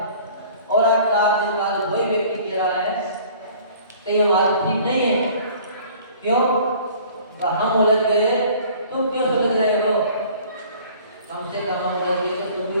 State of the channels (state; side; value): inverted; both; correlation -0.50